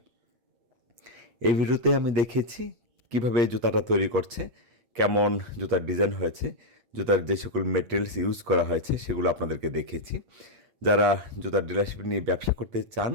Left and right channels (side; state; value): left; late; 8.4 ms